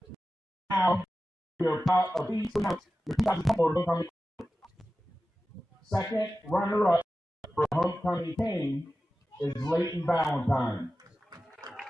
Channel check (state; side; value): normal; both; correlation 0.94